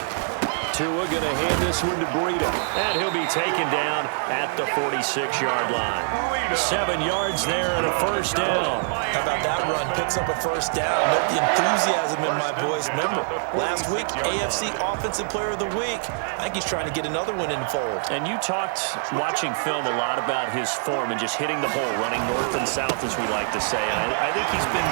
Tua going to hand this one to Breida. And he'll be taken down at the 46-yard line. 7 yards there and a 1st down. How about that run? Picks up a 1st down. Let the enthusiasm in my voice. Remember, last week, AFC Offensive Player of the Week. I think he's trying to get another one in the fold. And you talked, watching film, a lot about his form and just hitting the hole, running north and south, as we like to say. And I think he's been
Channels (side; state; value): left; silent; digital silence